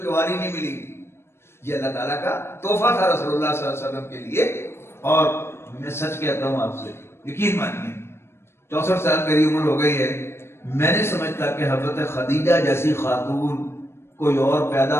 نہیں ملی. یہ اللہ تعالیٰ کا تحفہ تھا رسول اللہ صلی اللہ علیہ وسلم کے لیے. اور میں سچ کہتا ہوں آپ سے, یقین مانیے 64 سال میری عمر ہو گئی ہے, میں نہیں سمجھتا کہ حضرت خدیجہ جیسی خاتون کوئی اور پیدا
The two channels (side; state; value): right; late; 0.12 ms